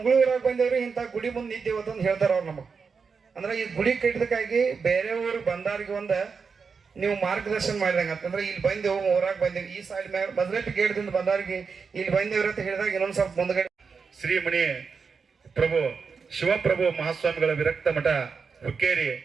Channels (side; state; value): left; quieter; 5.4 dB